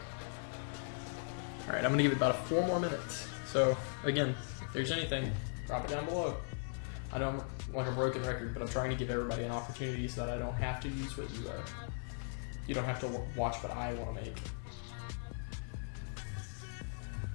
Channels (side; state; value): right; silent; 52 dB below the other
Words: Alright, I'm going to give it about 4 more minutes. So, again, if there's anything, drop it down below. I know I'm like a broken record, but I'm trying to give everybody an opportunity so that I don't have to use what you don't have to watch what I want to make.